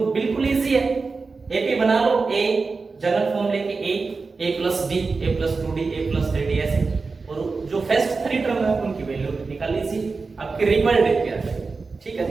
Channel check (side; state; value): left; quieter; 4.3 dB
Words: बिल्कुल इजी है। एपी बना लो, a जनरल फॉर्म लेके a plus d, a plus 2d, a plus 3d ऐसे, और जो फर्स्ट 3 टर्म है उनकी वैल्यू निकाल लीजिए, आपके रिजल्ट देख के आ जाएगा। ठीक है